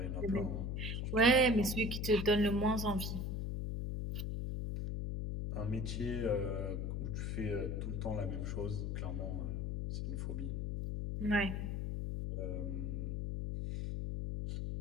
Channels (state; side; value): noise; left; hum, 2 dB below the sound